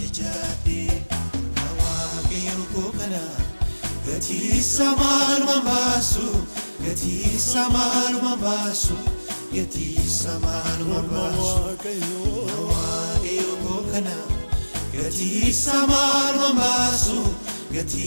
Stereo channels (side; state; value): both; inverted; correlation -1.00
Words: jechaadhee Waaqayyo koo kana gatiisa maalumaan baasu gatiisa maalumaan baasu gatiisa maalumaan baasu Waaqayyo koo kana gatiisa maalumaan baasu